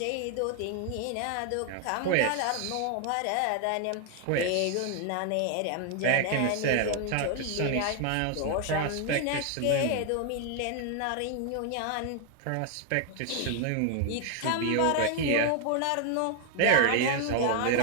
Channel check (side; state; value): both; different; correlation 0.00